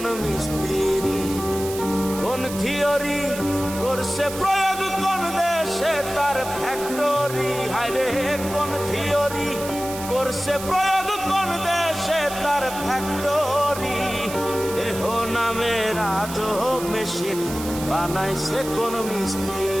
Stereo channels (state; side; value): noise; right; hiss, 11 dB below the sound